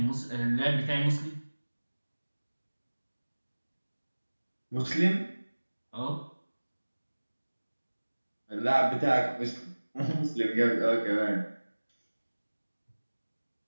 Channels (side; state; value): both; inverted; correlation -1.00